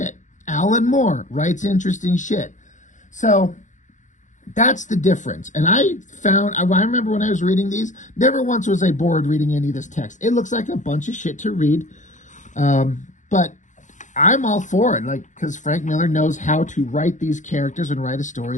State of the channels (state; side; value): late; right; 0.36 ms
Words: Alan Moore writes interesting shit. So that's the difference. And I remember when I was reading these, never once was I bored reading any of this text. It looks like a bunch of shit to read. But I'm all for it, like, because Frank Miller knows how to write these characters and write a